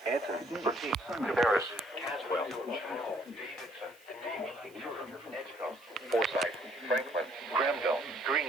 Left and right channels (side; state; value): right; noise; hiss, 27 dB below the sound